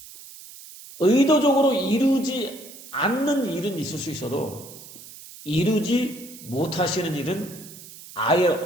의도적으로 이루지 않는 일은 있을 수 있어도 이루지 못하시는 일은 아예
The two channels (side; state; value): right; noise; hiss, 17 dB below the sound